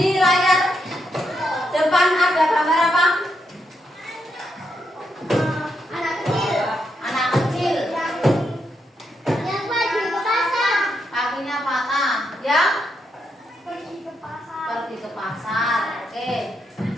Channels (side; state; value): both; normal; correlation 0.81